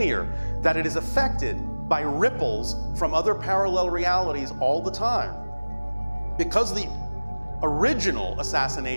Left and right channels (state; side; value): inverted; both; correlation -1.00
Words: that it is affected by ripples from other parallel realities all the time, because the original